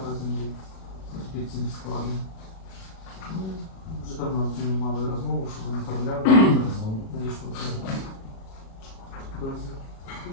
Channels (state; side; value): late; right; 37 ms